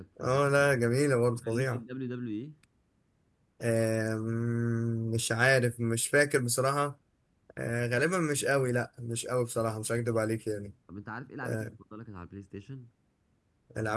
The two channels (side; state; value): both; identical; correlation 1.00